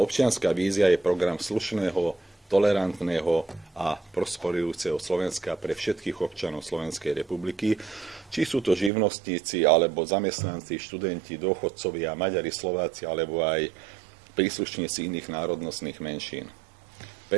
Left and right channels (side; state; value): left; drops out; at 8.9 s